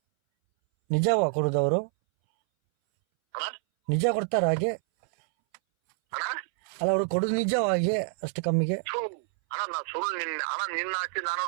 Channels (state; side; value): silent; left; 60 dB below the other